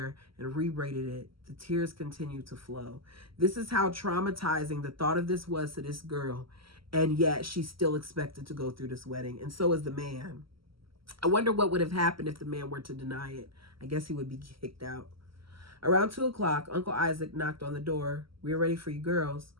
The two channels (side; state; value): left; late; 0.75 ms